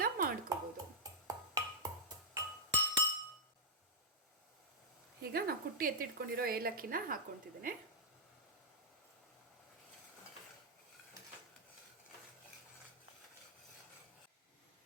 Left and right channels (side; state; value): both; normal; correlation -0.07